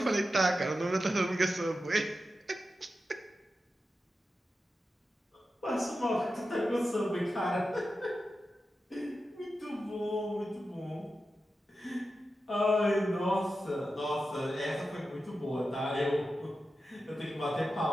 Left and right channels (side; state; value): both; normal; correlation 0.91